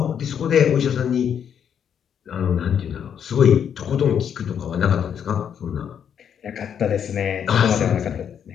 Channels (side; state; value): right; quieter; 8.3 dB